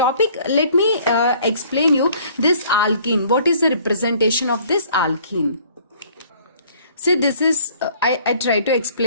let me explain you this alkene. What is the representation of this alkene? See, this is, I try to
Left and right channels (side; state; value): both; inverted; correlation -0.56